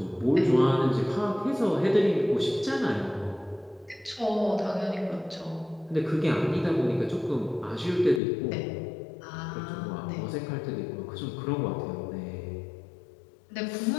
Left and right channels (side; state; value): right; drops out; at 8.2 s